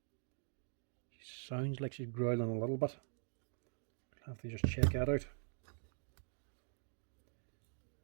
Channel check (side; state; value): left; silent; digital silence